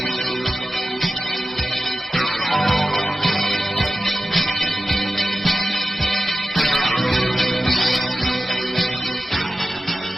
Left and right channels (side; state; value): both; normal; correlation 0.94